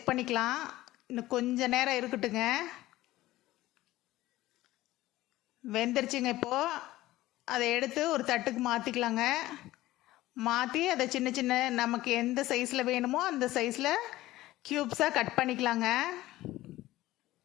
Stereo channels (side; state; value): right; quieter; 16.7 dB